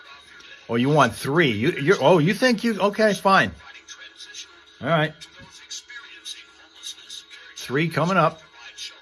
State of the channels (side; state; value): both; identical; correlation 1.00